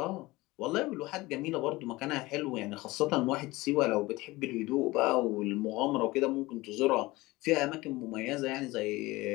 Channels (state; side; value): quieter; right; 20.5 dB